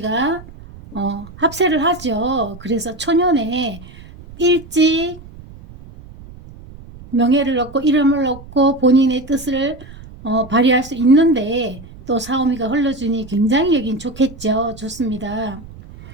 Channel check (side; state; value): right; noise; rumble, 18 dB below the sound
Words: 합세를 하죠. 그래서 초년에 일찍 명예를 얻고 이름을 얻고 본인의 뜻을 발휘할 수 있는데 또 사오미가 흘러주니 굉장히 여긴 좋겠죠. 좋습니다.